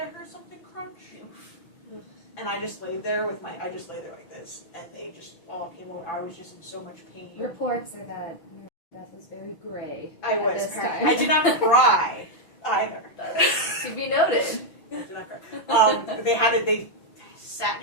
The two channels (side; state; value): right; late; 6.1 ms